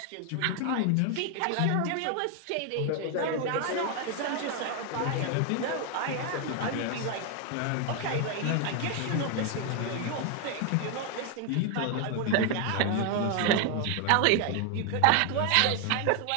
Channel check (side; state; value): both; different; correlation 0.01